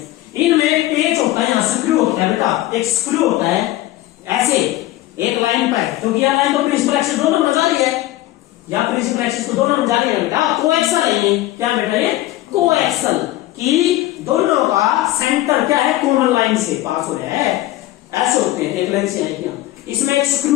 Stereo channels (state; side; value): quieter; right; 16.0 dB